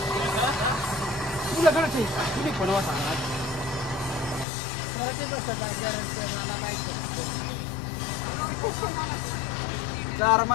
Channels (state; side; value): drops out; right; at 4.5 s